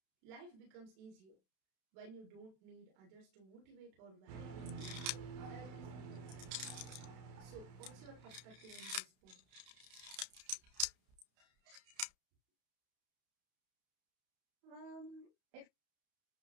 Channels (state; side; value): late; left; 31 ms